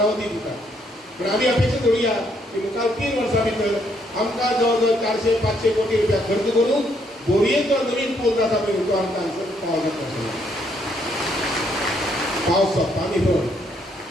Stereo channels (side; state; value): both; normal; correlation 0.71